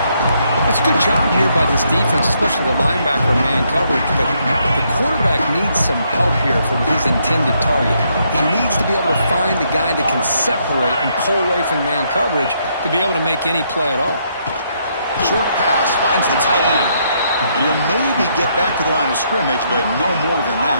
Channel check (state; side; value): inverted; both; correlation -0.74